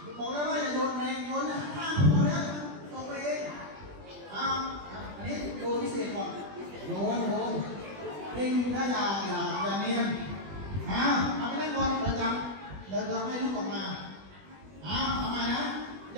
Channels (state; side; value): late; left; 20 ms